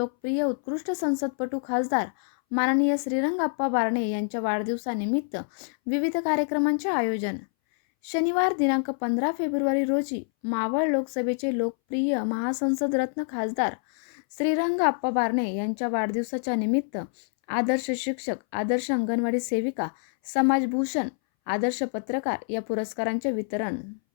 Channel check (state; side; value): silent; right; 60 dB below the other